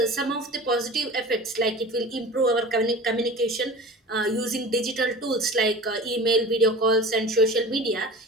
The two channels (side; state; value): both; normal; correlation 0.37